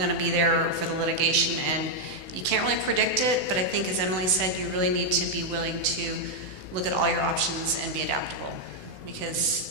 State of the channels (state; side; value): late; left; 16 ms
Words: to be there for the litigation. And you can't really predict it, but I think, as Emily said, you really need to be willing to look at all your options and be adaptable,